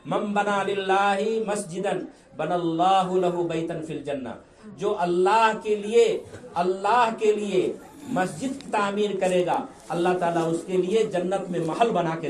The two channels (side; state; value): both; identical; correlation 1.00